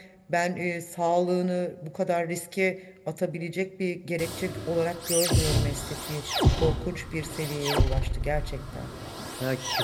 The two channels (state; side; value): identical; both; correlation 1.00